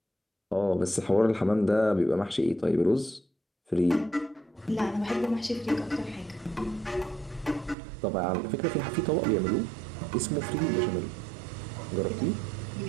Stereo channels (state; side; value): drops out; left; at 7.8 s